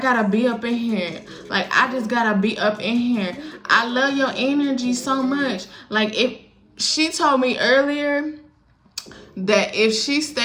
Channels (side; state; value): both; identical; correlation 1.00